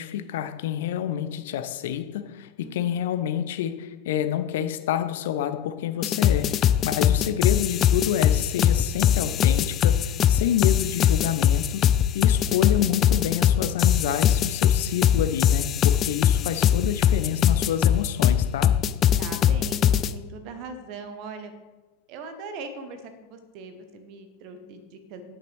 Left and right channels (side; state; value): right; quieter; 9.6 dB